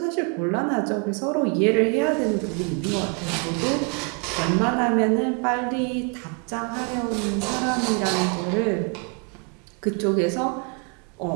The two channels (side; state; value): left; quieter; 36.8 dB